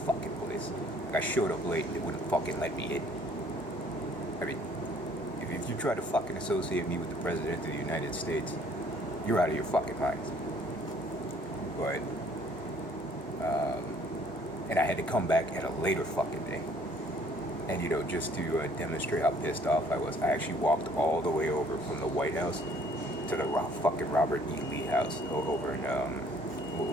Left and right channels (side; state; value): both; normal; correlation 0.59